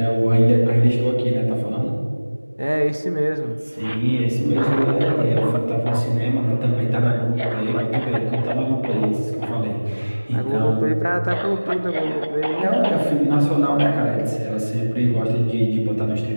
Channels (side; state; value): both; inverted; correlation -1.00